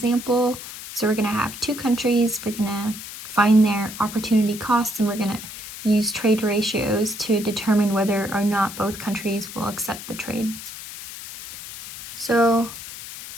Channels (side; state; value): left; noise; hiss, 12 dB below the sound